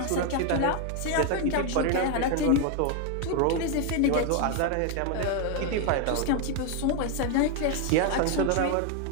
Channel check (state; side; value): different; both; correlation 0.01